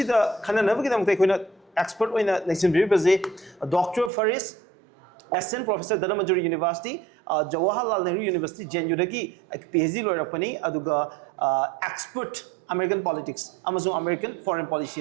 can never get them take an expert in a lesson Dr. Faris. Assistant Professor Dhanamajuri University, Jawaharlal Nehru University, Jenjudagi, PhD lawyer Pani, Aduga expert American politics, Amazon American foreign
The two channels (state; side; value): drops out; left; at 4.1 s